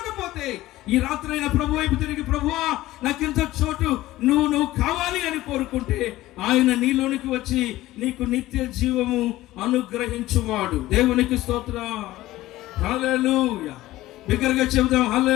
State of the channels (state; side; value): quieter; right; 16.4 dB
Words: ఈ రాత్రైనా ప్రభు వైపు తిరిగి, ప్రభువా నాకింత చోటు నువ్వు కావాలి అని కోరుకుంటే, ఆయన నీలోనికి వచ్చి నీకు నిత్య జీవము అనుగ్రహించువాడు. దేవునికి స్తోత్రం. హల్లెలూయా. బిగ్గరగా చెబుదాం,